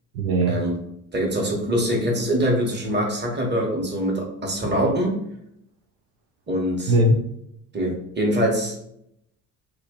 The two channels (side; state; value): both; normal; correlation 0.27